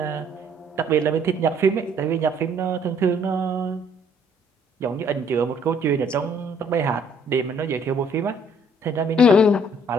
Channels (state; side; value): normal; both; correlation 0.63